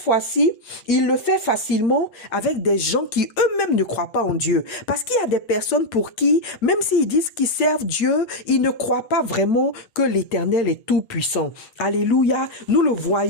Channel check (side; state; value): right; late; 8.6 ms